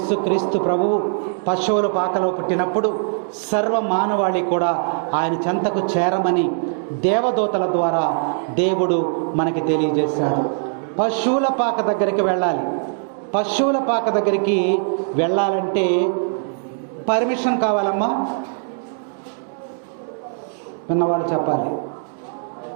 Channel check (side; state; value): left; silent; digital silence